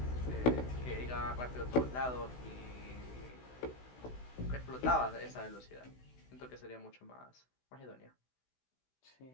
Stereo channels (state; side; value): late; right; 16 ms